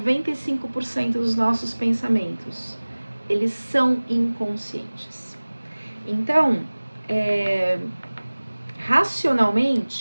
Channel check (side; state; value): both; inverted; correlation -1.00